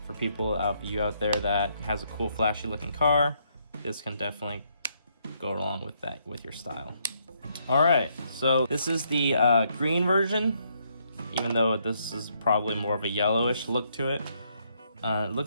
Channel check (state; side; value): inverted; both; correlation -0.73